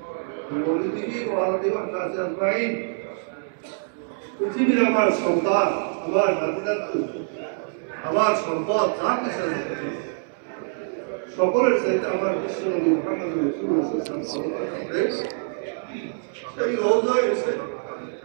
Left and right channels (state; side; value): silent; left; digital silence